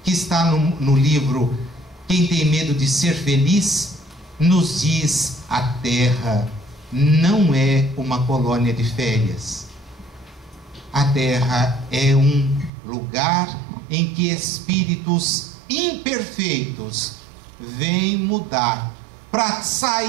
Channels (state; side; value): drops out; left; at 12.7 s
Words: que está no livro Quem Tem Medo de Ser Feliz, nos diz: a Terra não é uma colônia de férias. A Terra é um lugar em que espíritos imperfeitos vêm mudar para